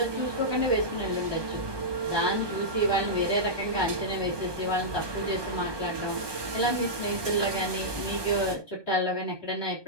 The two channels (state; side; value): late; left; 1.2 ms